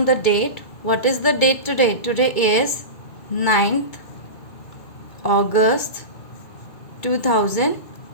the date. What is the date today? Today is 9th August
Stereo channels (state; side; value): late; right; 2.2 ms